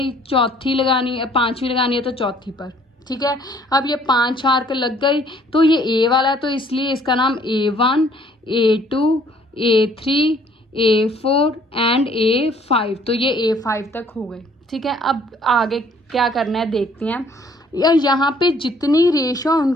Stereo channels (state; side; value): normal; both; correlation 0.60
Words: चौथी लगानी है, पाँचवीं लगानी है तो चौथी पर, ठीक है। अब ये 5 आर्क लग गई। तो ये ए वाला है तो इसलिए इसका नाम A1, A2, A3, A4 and A5। तो ये A5 तक हो गई, ठीक है। अब आगे क्या करना है देखते हैं। यहाँ पे जितनी रेशो